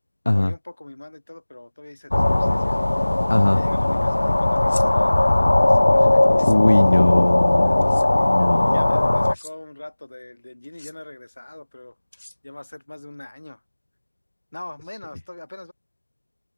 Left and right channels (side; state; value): both; inverted; correlation -1.00